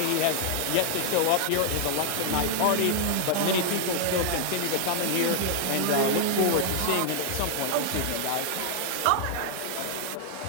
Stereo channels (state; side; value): different; both; correlation 0.00